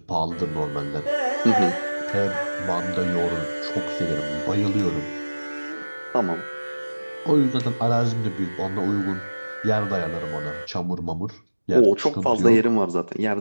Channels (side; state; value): both; inverted; correlation -1.00